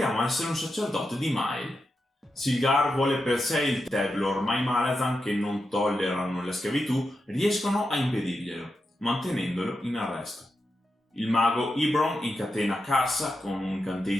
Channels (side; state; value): both; normal; correlation 0.88